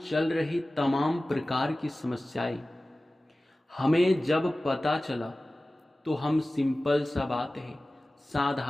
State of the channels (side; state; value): both; normal; correlation 0.97